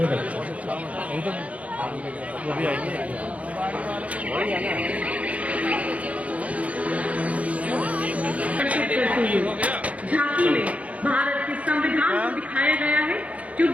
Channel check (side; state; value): left; late; 0.066 ms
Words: झांकी में भारत के संविधान को दिखाया गया है, जो